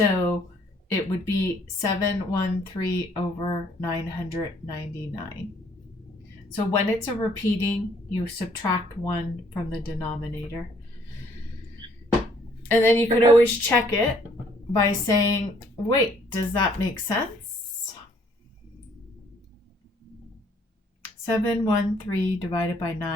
it would be 713 over 999. So when it's a repeating, you subtract 1 from the denominator. And then you could always check it by saying, wait, does that make sense? 713 divided by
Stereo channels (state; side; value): normal; both; correlation 0.63